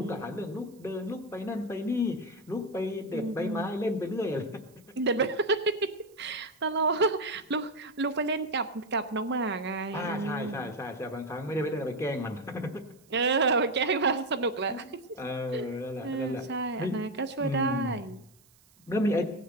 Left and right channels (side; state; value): right; noise; hiss, 30 dB below the sound